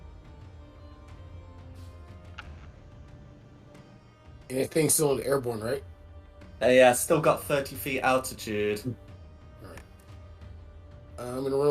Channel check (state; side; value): identical; both; correlation 1.00